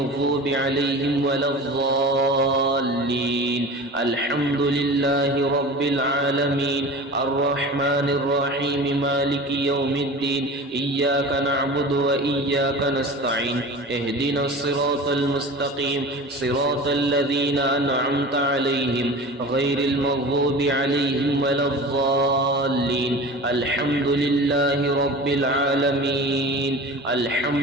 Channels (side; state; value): both; normal; correlation 0.36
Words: عليهم ولا الضالين الحمد لله رب العالمين الرحمن الرحيم مالك يوم الدين إياك نعبد وإياك نستعين اهدنا الصراط المستقيم صراط الذين أنعمت عليهم غير المغضوب عليهم ولا الضالين الحمد لله رب العالمين